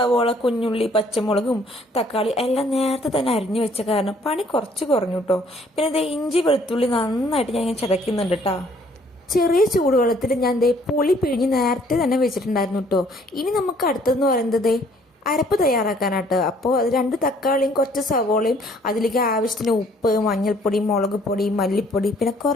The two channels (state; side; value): normal; both; correlation 0.61